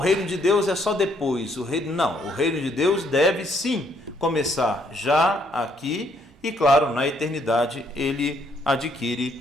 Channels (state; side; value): normal; both; correlation 0.69